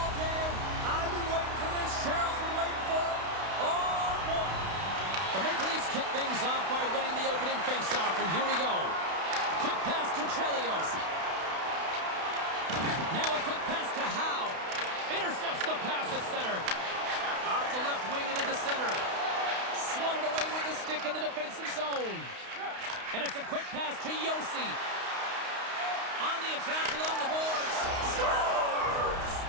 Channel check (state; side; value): late; left; 32 ms